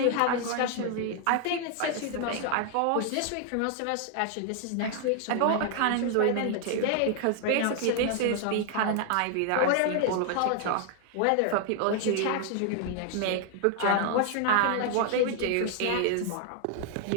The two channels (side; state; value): both; different; correlation 0.00